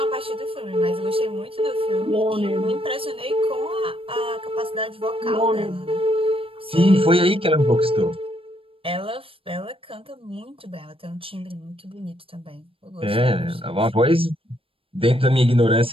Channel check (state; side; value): late; left; 0.27 ms